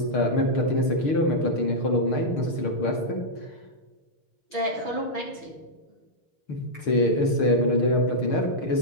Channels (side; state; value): right; late; 6.6 ms